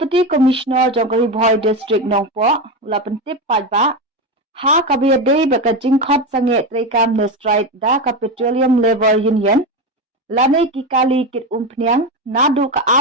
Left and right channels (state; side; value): normal; both; correlation 0.17